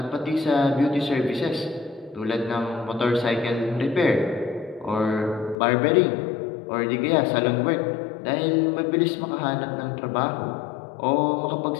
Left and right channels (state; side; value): drops out; right; at 5.6 s